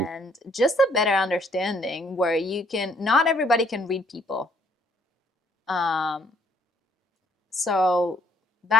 And just a better understanding where you can, not everybody can read people. Um, so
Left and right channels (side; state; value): both; normal; correlation 0.65